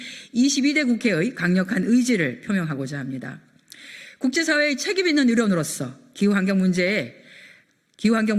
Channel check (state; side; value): identical; both; correlation 1.00